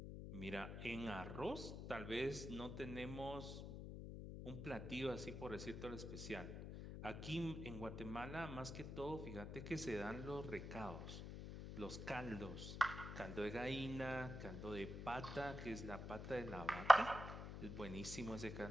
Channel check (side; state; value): left; noise; hum, 7 dB below the sound